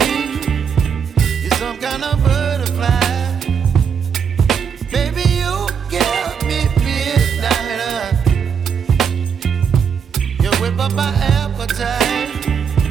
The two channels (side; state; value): left; quieter; 7.0 dB